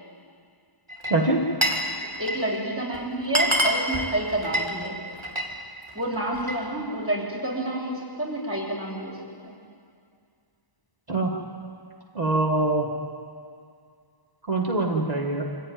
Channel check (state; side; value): late; right; 1.0 ms